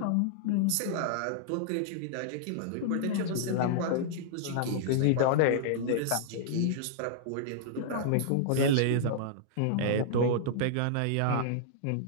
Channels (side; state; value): both; different; correlation -0.01